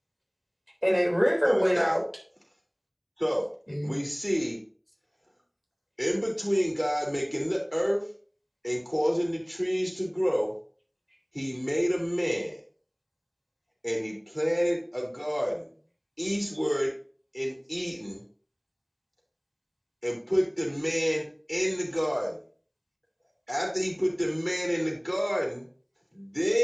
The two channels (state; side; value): identical; both; correlation 1.00